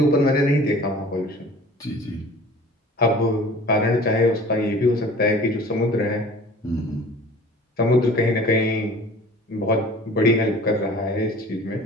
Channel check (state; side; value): normal; both; correlation 0.45